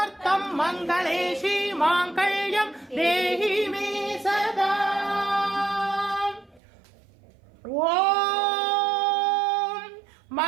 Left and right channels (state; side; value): drops out; left; at 6.6 s